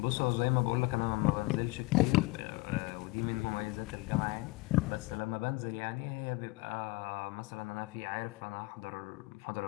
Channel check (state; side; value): quieter; right; 23.2 dB